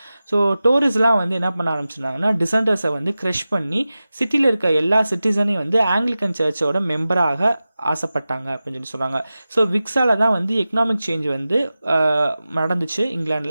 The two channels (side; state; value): both; inverted; correlation -0.95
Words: ஸோ டோரிஸ்லாம் வந்து என்ன பண்ண ஆரம்பிச்சிருந்தாங்கன்னா டிசன்டர்ஸை வந்து க்ரஷ் பண்ணி சிட்டியில் இருக்க எல்லா சிட்டிசனையும் வந்து ஆங்கிலிக்கன் சர்ச்சோட மெம்பராக ஆசைப்பட்டாங்க அப்படின்னு சொல்லி சொல்கிறாங்க. ஸோ விக்ஸால் தான் வந்து எக்கனாமிக் சேஞ்ச் வந்து நடந்துச்சு